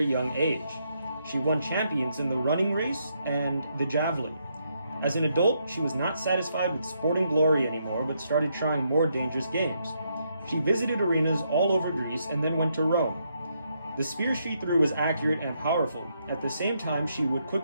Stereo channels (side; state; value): both; inverted; correlation -0.77